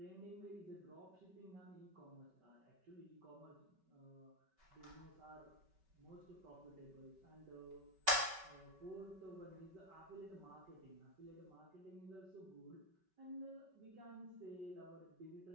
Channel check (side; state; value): left; late; 5.2 ms